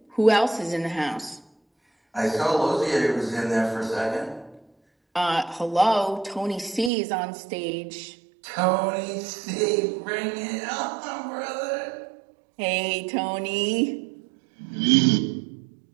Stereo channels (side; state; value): left; drops out; at 6.9 s